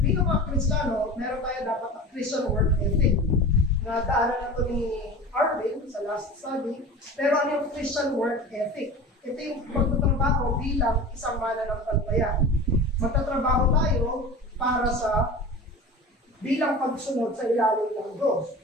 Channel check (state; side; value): normal; both; correlation 0.34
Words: mga Kristiyano, meron tayo dapat ang Christian work ethic. Na daanan na ito ni Arvin sa last study. Pero ano yung Christian work ethic? Ito yung pagtatrabaho bilang isang mananampalataya. Magtatrabaho tayo para sa bilang pagsunod sa ilalim ng Diyos.